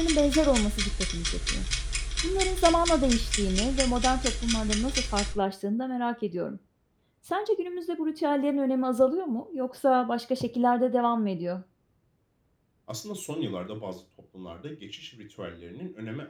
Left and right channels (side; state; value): both; identical; correlation 1.00